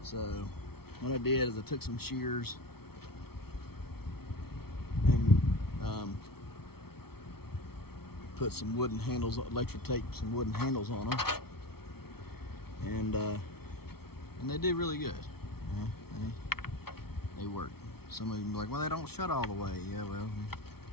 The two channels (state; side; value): late; right; 0.95 ms